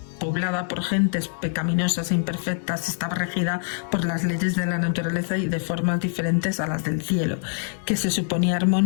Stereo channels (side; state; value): right; silent; digital silence